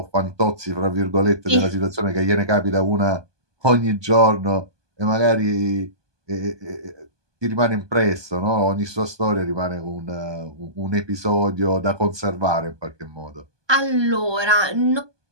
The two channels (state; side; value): late; left; 1.2 ms